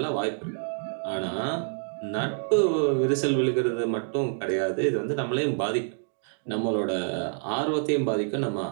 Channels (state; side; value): silent; left; 60 dB below the other